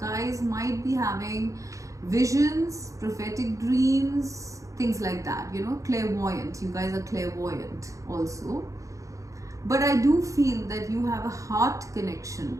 might be having visions, prophetic dreams, things like that, you know, clairvoyant. You guys are clairvoyant also. But I do feel that you have a heart connection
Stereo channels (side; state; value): left; late; 0.16 ms